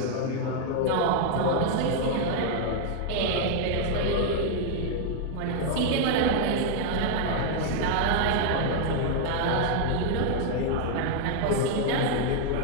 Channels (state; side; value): different; both; correlation 0.00